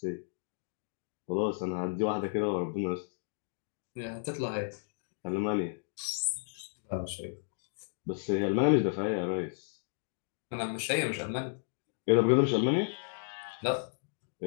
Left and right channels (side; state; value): right; silent; digital silence